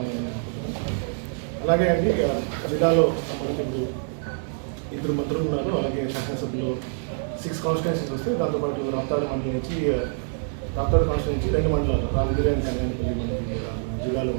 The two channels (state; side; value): silent; left; 61 dB below the other